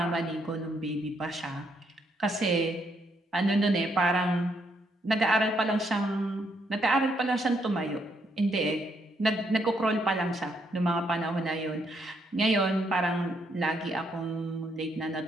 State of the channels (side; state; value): both; normal; correlation 0.74